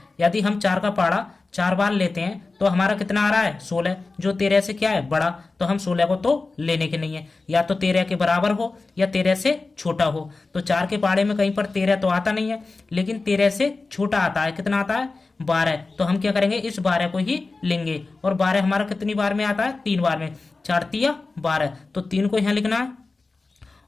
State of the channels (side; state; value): right; quieter; 3.7 dB